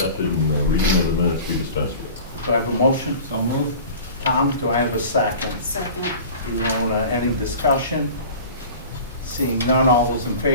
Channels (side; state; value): both; inverted; correlation -0.40